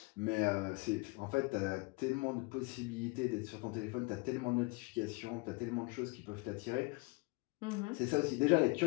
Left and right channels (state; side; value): quieter; right; 26.7 dB